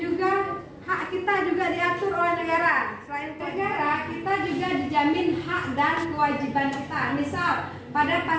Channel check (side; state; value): both; identical; correlation 1.00